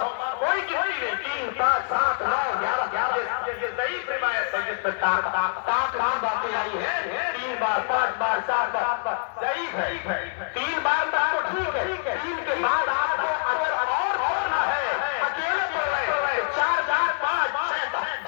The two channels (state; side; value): silent; right; digital silence